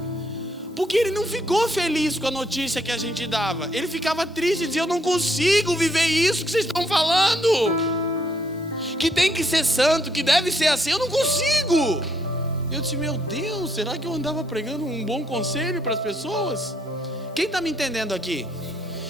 Porque ele não ficou feliz com a notícia que a gente dava. Ele ficava triste e dizia, eu não consigo viver isso que vocês estão falando. Que tem que ser santo, que deve ser assim, eu não consigo. Eu disse, meu Deus, será que eu andava pregando um bom conselho para as pessoas? Quem está me entendendo aqui?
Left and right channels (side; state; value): both; normal; correlation 0.71